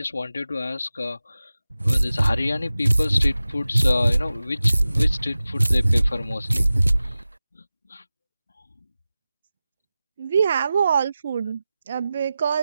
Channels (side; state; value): both; inverted; correlation -0.95